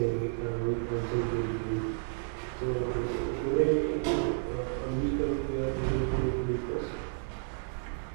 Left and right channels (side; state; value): left; silent; digital silence